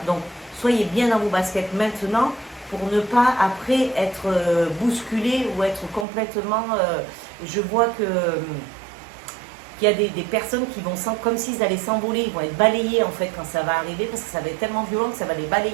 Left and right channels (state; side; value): drops out; left; at 6.1 s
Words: Donc, soyez bien dans vos baskets maintenant pour ne pas après être bousculé ou être complètement... je vois que qu'il y a des personnes qui vont comme s'ils allaient s'envoler, ils vont être balayés en fait quand ça va arriver, parce que ça va être tellement violent que ça va les